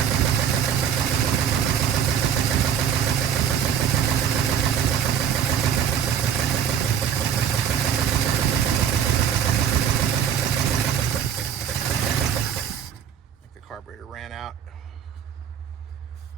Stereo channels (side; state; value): left; quieter; 8.4 dB